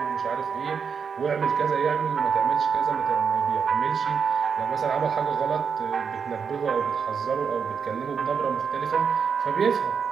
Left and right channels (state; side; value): quieter; left; 6.3 dB